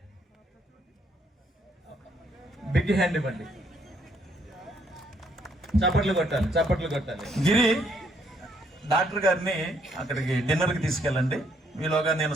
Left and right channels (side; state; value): both; normal; correlation 0.70